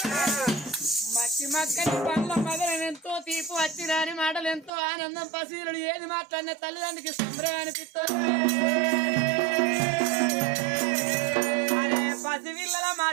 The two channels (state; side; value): drops out; left; at 4.7 s